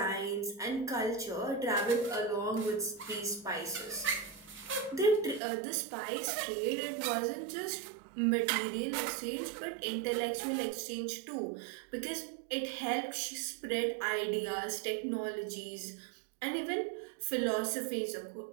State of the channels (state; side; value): drops out; left; at 5.4 s